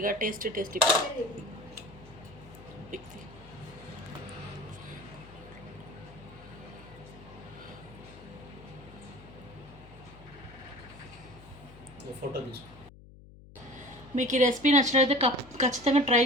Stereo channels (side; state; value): left; noise; hum, 20 dB below the sound